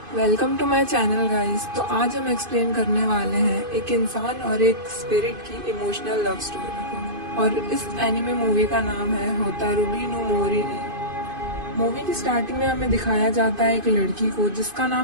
Welcome to my channel guys. तो आज हम एक्सप्लेन करने वाले हैं एक इंसान और एक स्पिरिट की इमोशनल लव स्टोरी को। और इस एनिमे मूवी का नाम है होतारुरी नो मोरी। मूवी की स्टार्टिंग में हमें दिखाया जाता है एक लड़की को जिसका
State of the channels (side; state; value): left; late; 2.5 ms